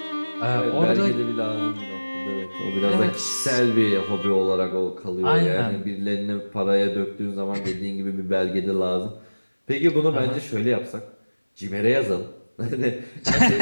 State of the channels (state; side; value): inverted; both; correlation -1.00